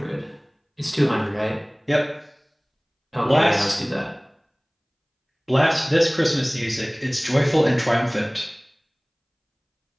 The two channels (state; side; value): identical; both; correlation 1.00